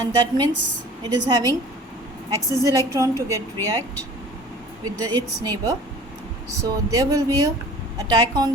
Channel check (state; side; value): normal; both; correlation 0.45